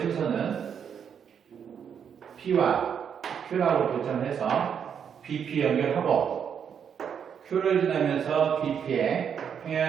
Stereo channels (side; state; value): left; quieter; 7.7 dB